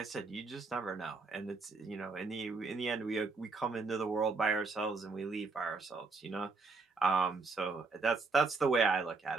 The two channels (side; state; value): left; quieter; 4.1 dB